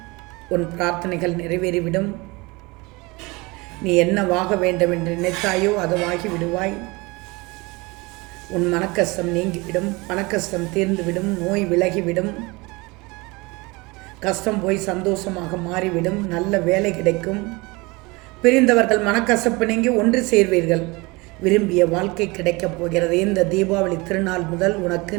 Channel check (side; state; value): left; quieter; 24.7 dB